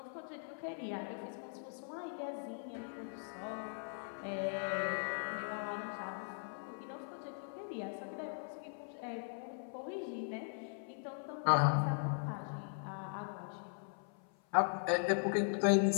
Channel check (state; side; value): silent; right; 51 dB below the other